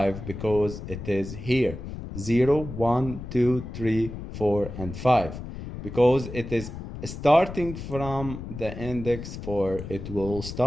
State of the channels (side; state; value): left; noise; rumble, 9 dB below the sound